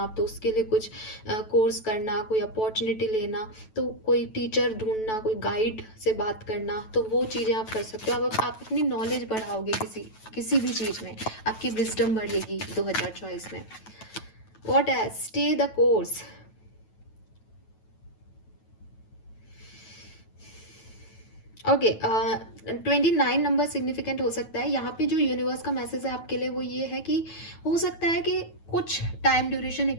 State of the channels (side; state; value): right; late; 9.2 ms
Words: तो उसके लिए कुछ कोर्स करना, कोई अपॉर्चुनिटी लेना, तो कोई टीचर ढूंढना, कोई गाइड से बात करना, तो वो चीज़ें आप कर सकते हो। आप अपनी नॉलेज बढ़ाओगे किसी भी चीज़ में, आपकी विजडम बढ़ेगी 2024 में। What else? Stay the course. Okay, 29 number significant हो सकता है। यहाँ पे जो यूनिवर्स का मैसेज है आपके लिए वो ये है कि हो सकता है कि कुछ टाइम ड्यूरेशन